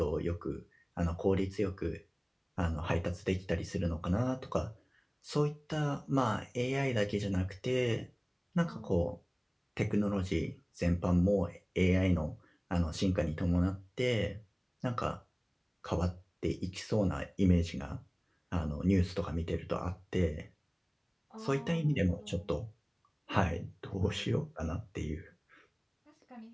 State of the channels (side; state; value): both; identical; correlation 1.00